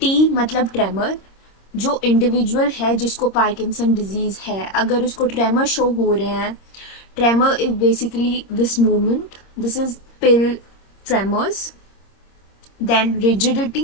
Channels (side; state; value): right; late; 26 ms